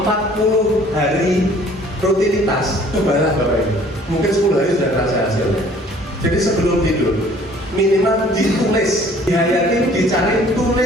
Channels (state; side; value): normal; both; correlation 0.55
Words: hari rutinitas, cobalah Bapak Ibu. Mungkin 10 hari sudah terasa hasilnya. Jadi sebelum tidur, minimal ditulis, dihayati, dicari,